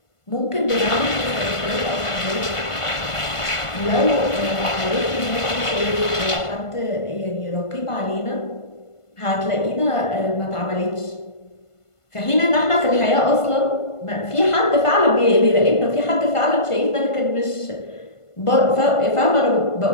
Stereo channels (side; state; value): right; late; 1.5 ms